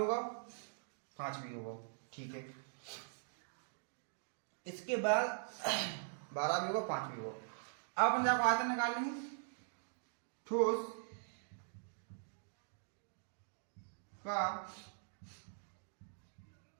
5 भी होगा, ठीक है। इसके बाद 12 भी होगा 5 भी होगा। अब अपन जाकर आयतन निकाल लेंगे, ठोस का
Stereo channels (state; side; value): silent; left; digital silence